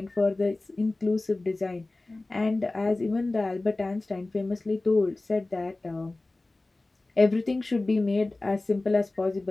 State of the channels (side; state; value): right; quieter; 3.0 dB